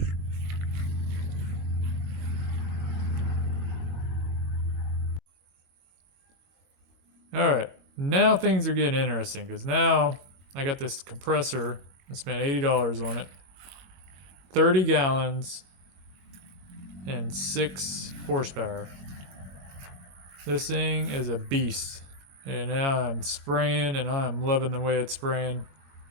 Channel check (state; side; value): late; left; 21 ms